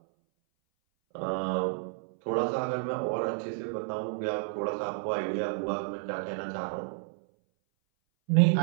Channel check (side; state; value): left; silent; 57 dB below the other